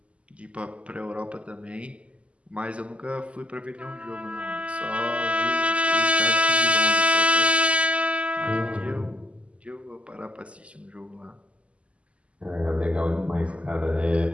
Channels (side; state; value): left; late; 0.060 ms